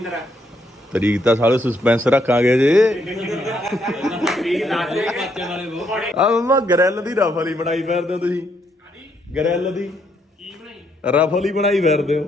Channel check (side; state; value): both; normal; correlation 0.74